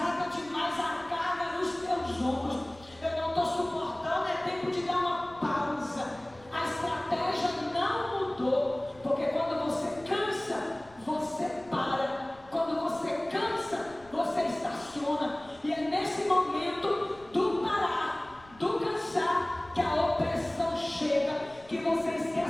demais a carga nos teus ombros, eu não estou suportando, é tempo de dar uma pausa. A estratégia não mudou, porque quando você cansa, você para. Quando você cansa, você estaciona. E é nesse momento do parar, do cansar, que a opressão chega, que você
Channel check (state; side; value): noise; left; rumble, 25 dB below the sound